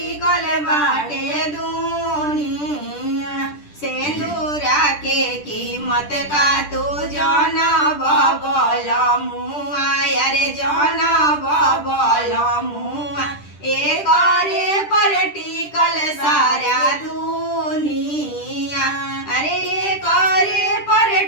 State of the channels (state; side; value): late; right; 10 ms